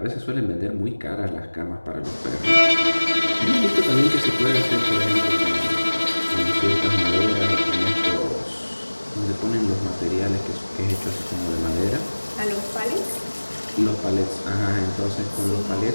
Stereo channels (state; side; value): inverted; both; correlation -1.00